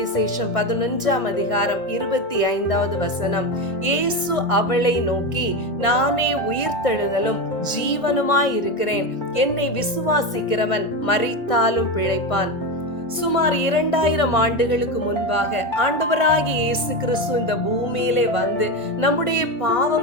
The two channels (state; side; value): late; right; 1.5 ms